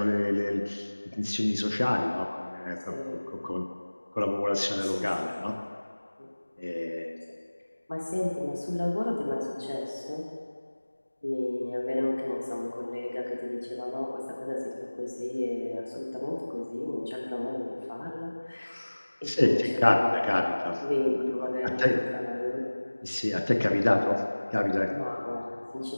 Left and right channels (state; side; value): inverted; both; correlation -1.00